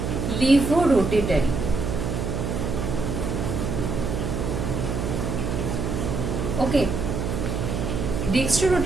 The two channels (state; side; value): noise; right; hum, 2 dB below the sound